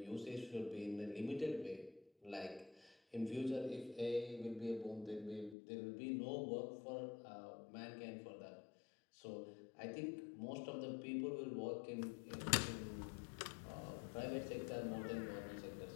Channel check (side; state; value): right; drops out; at 5.6 s